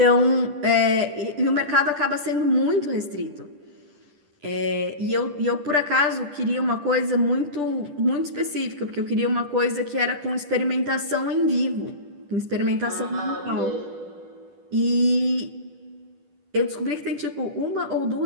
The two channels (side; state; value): left; late; 10 ms